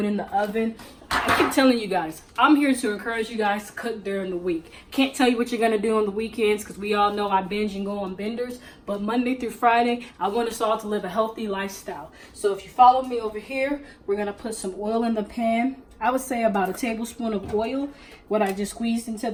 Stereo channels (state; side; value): identical; both; correlation 1.00